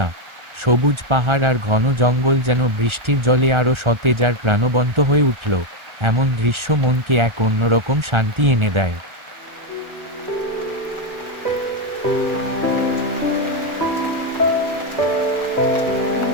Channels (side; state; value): left; late; 1.4 ms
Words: সবুজ পাহাড় আর ঘন জঙ্গল যেন বৃষ্টির জলে আরও সতেজ আর প্রাণবন্ত হয়ে উঠল। এমন দৃশ্য মনকে এক অন্যরকম শান্তি এনে দেয়।